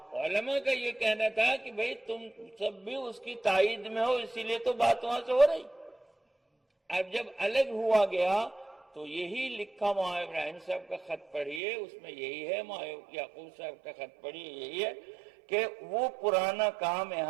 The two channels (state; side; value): drops out; left; at 11.6 s